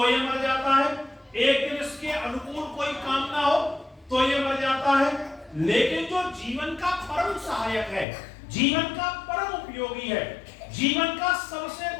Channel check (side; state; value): right; drops out; at 8.1 s